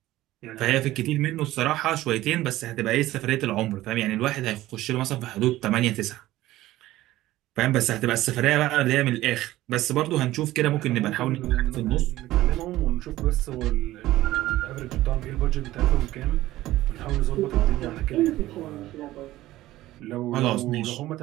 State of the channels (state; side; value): quieter; left; 15.9 dB